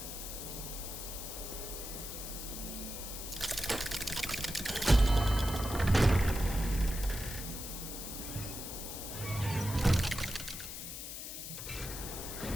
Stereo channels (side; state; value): left; noise; hiss, 8 dB below the sound